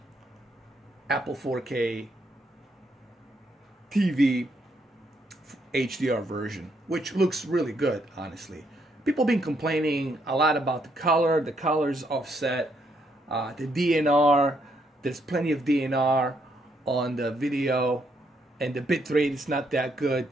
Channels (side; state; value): both; normal; correlation 0.74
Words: Apple 4K TV HDR version, which looks really good, honestly. People have been complaining a lot about the color. The color's offset. The DNR, there's plenty of DNR on the video, and the bitrate is not that good.